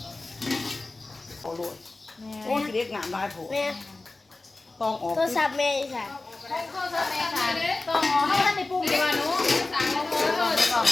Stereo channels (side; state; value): right; quieter; 3.2 dB